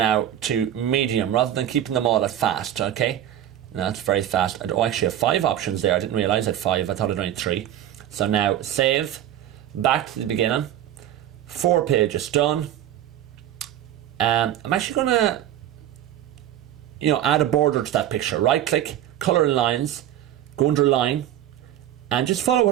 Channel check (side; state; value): left; quieter; 11.7 dB